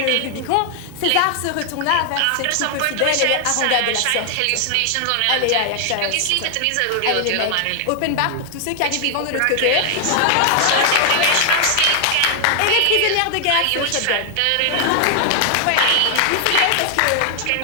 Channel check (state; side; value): different; both; correlation 0.00